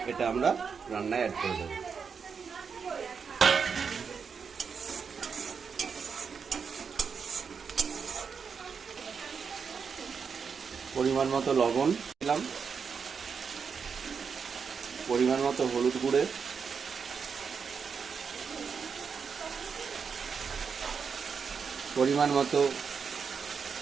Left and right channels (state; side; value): quieter; left; 6.0 dB